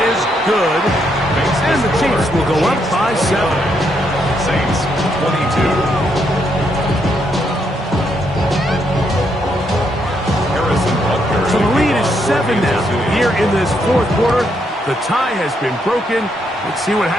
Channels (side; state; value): both; normal; correlation 0.76